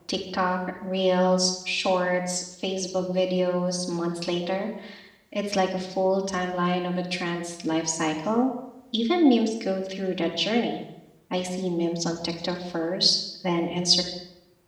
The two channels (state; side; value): identical; both; correlation 1.00